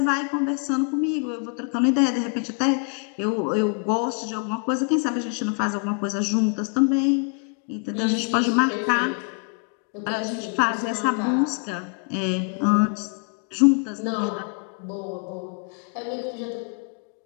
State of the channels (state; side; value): quieter; right; 38.2 dB